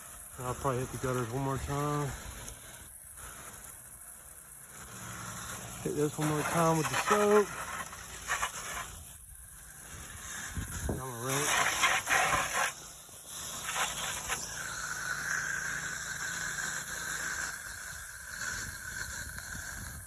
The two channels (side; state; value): both; identical; correlation 1.00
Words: And I'll probably hit the gutters one more time. Hit this one more time with the soap. And I'm gonna rinse.